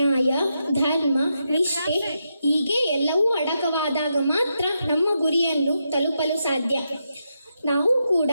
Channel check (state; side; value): inverted; both; correlation -0.84